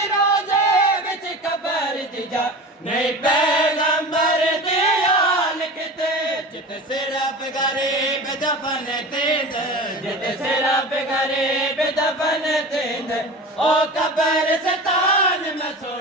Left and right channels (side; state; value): both; normal; correlation 0.33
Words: रोज़े विच कबर दी जा नहीं पैगंबर दे हाल किते जित सिर्फ गरीब दफन तेंद जित सिर्फ गरीब दफन तेंद ओ कबर सतान मैं